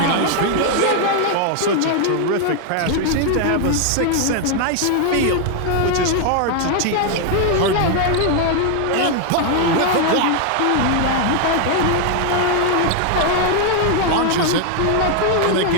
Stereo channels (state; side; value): different; both; correlation 0.00